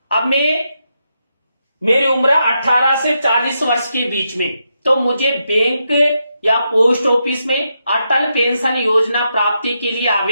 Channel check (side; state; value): both; inverted; correlation -0.83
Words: अब मेरी उम्र 18 से 40 वर्ष के बीच में, तो मुझे बैंक या पोस्ट ऑफिस में अटल पेंशन योजना प्राप्ति के लिए